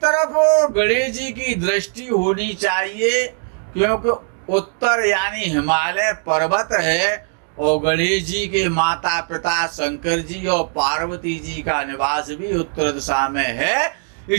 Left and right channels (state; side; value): silent; left; 56 dB below the other